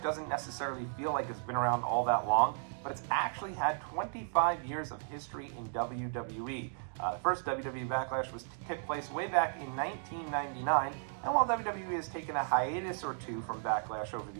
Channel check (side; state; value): left; silent; digital silence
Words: doesn't necessarily feel like it's been around all that long, but it's actually had 25 years of history in WWE. The first WWE Backlash took place way back in 1999, and while WWE has taken a hiatus or two from Backlash over